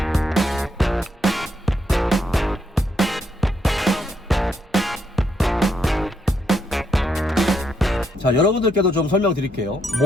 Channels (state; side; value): normal; both; correlation 0.77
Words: 자, 여러분들께도 좀 설명드릴게요.